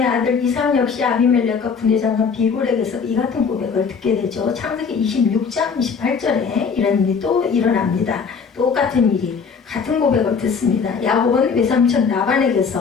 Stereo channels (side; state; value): right; quieter; 5.8 dB